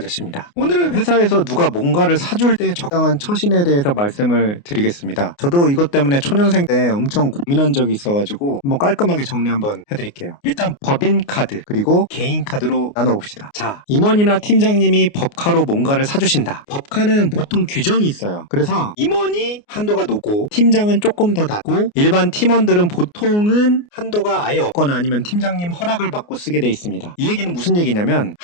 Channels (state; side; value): late; right; 29 ms